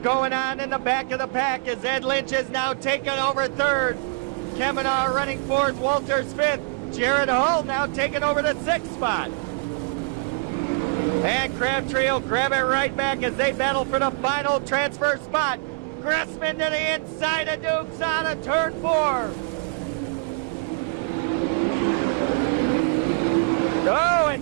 going on in the back of the pack as Ed Lynch is now taking over 3rd. Kemmenaugh running 4th, Walters 5th. Jared Hall now taking over the 6th spot. And Crabtree will grab it right back as they battle for the final transfer spot. Gressman to the inside of Dukes on a turn 4. Oh,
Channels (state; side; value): quieter; left; 37.9 dB